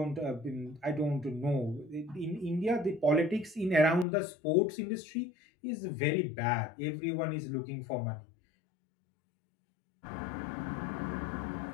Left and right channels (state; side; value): drops out; right; at 4.0 s